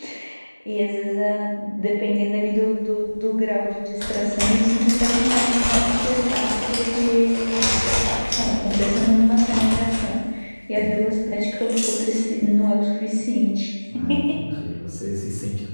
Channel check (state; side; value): inverted; both; correlation -1.00